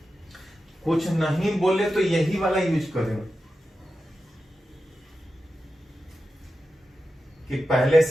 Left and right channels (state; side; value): normal; both; correlation 0.91